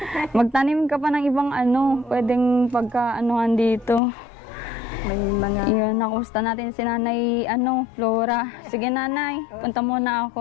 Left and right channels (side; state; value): right; drops out; at 4.0 s